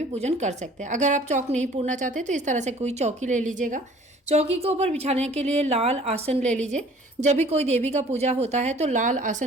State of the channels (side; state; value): both; normal; correlation 0.52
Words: पूजन कर सकते हैं। अगर आप चौक नहीं पूरना चाहते तो इस तरह से कोई चौकी ले लीजिएगा। चौकी के ऊपर बिछाने के लिए लाल आसन ले लीजिए। जब भी कोई देवी का पूजा होता है तो लाल